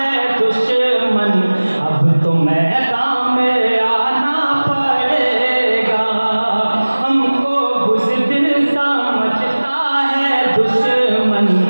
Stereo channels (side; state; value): both; inverted; correlation -1.00